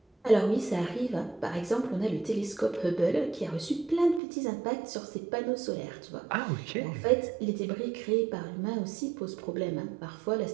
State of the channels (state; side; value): drops out; left; at 4.2 s